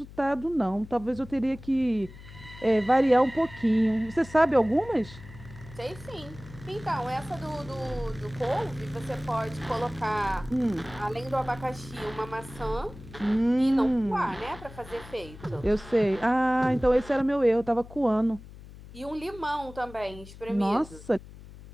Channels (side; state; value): left; noise; hum, 17 dB below the sound